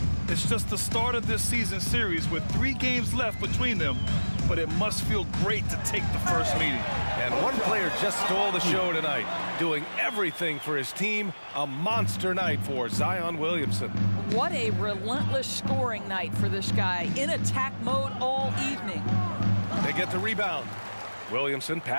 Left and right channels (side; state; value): both; inverted; correlation -1.00